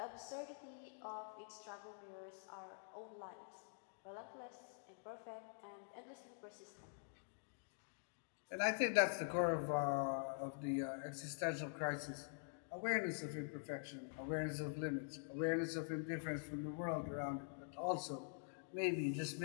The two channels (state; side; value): silent; right; digital silence